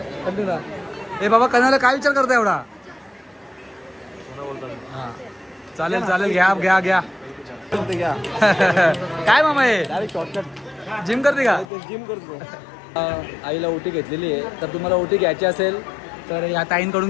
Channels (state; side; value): drops out; right; at 11.7 s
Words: कंटिन्यू. ए बाबा, कनावल्या काय विचार करता एवढा? हा चालेल चालेल, घ्या घ्या घ्या. काय मामा हे डायरेक्ट शॉर्टकट जिम करते का? जिम करतो. आईला ओटी घेतलेली आहे, तर तुम्हाला ओटी घ्यायची असेल तर या ताईंकडून